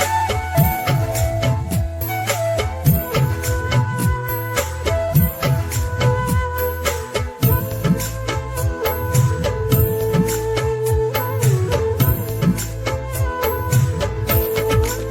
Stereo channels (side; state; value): both; identical; correlation 1.00